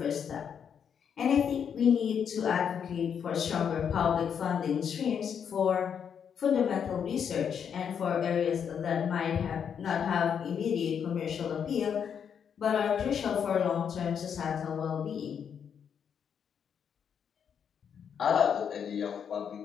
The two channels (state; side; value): quieter; right; 7.6 dB